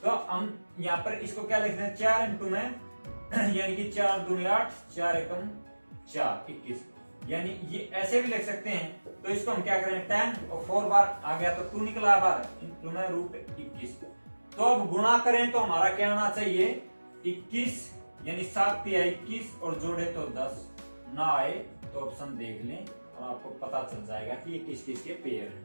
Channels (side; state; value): both; inverted; correlation -1.00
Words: तो हम यहाँ पर इसको क्या लिखते हैं, 4 इंटू में यानी कि 4 दूनी 8, 4 एकम 4 21, यानी ये ऐसे भी लिख सकते हैं। तो इसको हम क्या करें, 10 और 4 बार आ गया तो 2 निकला बार इंटू में √21। तो अब गुणा करें तो हमारा क्या आना चाहिए 21, यानी 7 तिया 21 और जोड़े तो 10 ना आए तो ऑप्शन देख लें और आपको पता चल जाएगा कि ये किस किस के पेयर